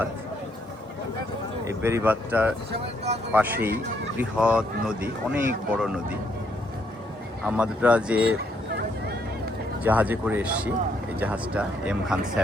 এই বেড়িবাঁধটার পাশেই বৃহৎ নদী, অনেক বড় নদী। আমরা যে জাহাজে করে এসেছি, এই জাহাজটা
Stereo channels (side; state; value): both; normal; correlation 0.72